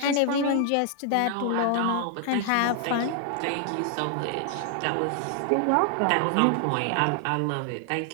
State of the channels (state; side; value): different; both; correlation 0.00